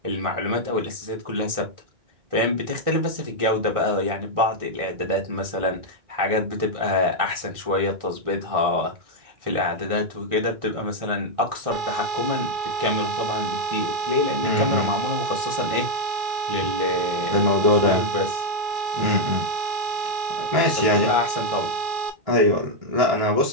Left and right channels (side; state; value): left; late; 1.6 ms